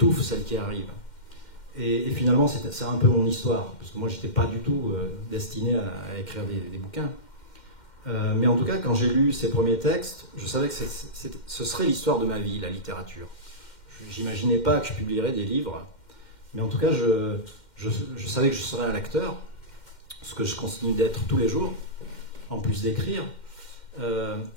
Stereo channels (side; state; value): right; late; 2.1 ms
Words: celle qui arrive. Et finalement, c'est un peu mon histoire, parce que moi, je n'étais pas du tout destiné à écrire des bouquins. Mais en tout cas, quand j'ai lu ces premiers textes, je savais que ce serait l'histoire de ma vie, la littérature. Je n'imaginais pas que je publierais des livres, mais en tout cas, je savais que je serais un lecteur, ce que je continue d'être tous les jours, en plus d'écrire.